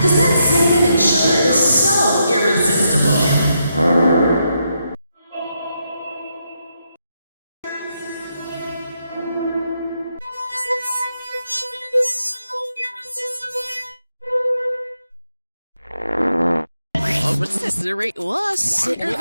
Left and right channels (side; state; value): both; inverted; correlation -0.81